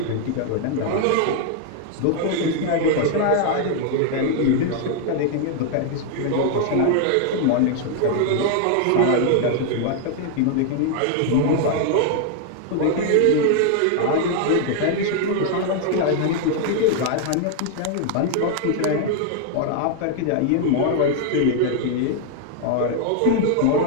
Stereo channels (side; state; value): both; different; correlation 0.00